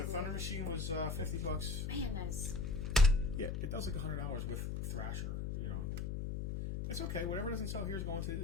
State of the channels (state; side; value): noise; left; hum, 2 dB below the sound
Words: Thunder Machine was 50 bucks. Man, that is. Yeah, it does like $100 with Thrasher. You know, it's okay. Whatever doesn't sell here is going to